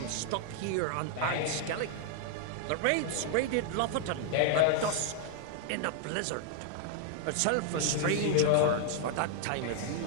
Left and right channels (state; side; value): different; both; correlation 0.00